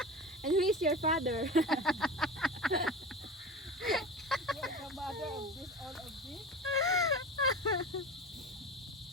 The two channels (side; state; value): both; normal; correlation 0.30